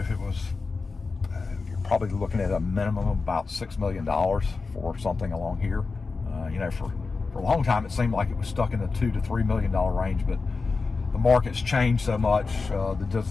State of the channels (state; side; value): quieter; right; 4.3 dB